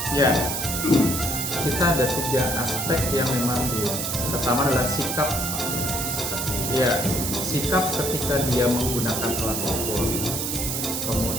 Ya, kita ada 3 aspek yang memang pertama adalah sikap. Ya, sikap ketika dia menggunakan alat ukur.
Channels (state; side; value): noise; right; hiss, 2 dB below the sound